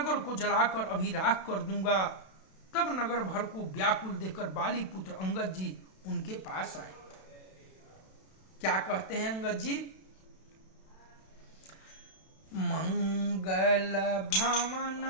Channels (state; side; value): late; right; 32 ms